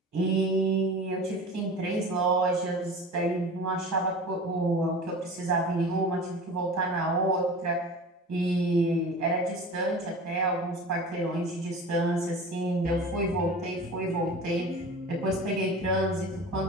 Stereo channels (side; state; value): both; normal; correlation 0.36